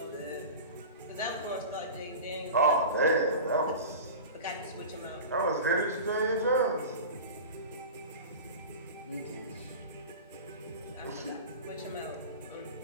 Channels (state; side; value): inverted; both; correlation -0.32